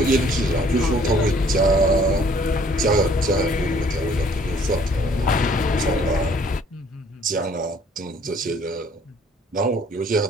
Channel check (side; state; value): both; normal; correlation 0.59